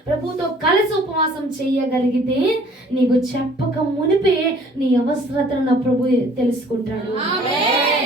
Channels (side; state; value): both; normal; correlation 0.55